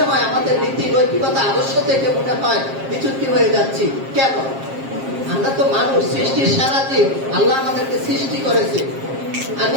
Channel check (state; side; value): late; left; 7.5 ms